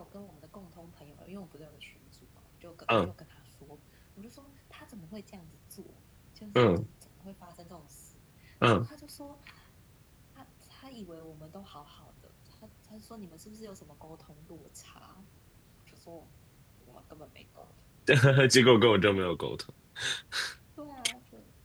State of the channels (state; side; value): identical; both; correlation 1.00